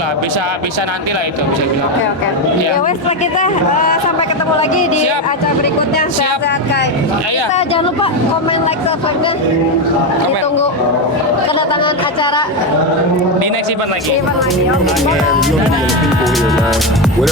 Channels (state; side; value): normal; both; correlation 0.10